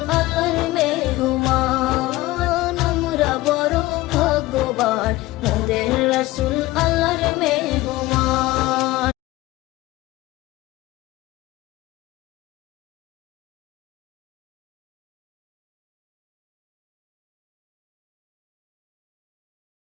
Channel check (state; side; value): quieter; right; 18.4 dB